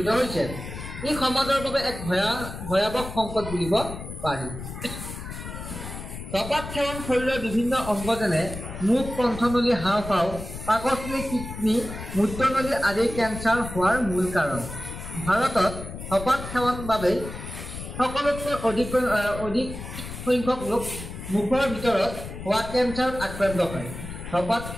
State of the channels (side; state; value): left; noise; rumble, 10 dB below the sound